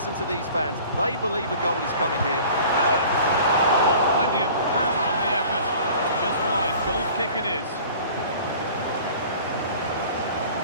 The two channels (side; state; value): both; inverted; correlation -0.46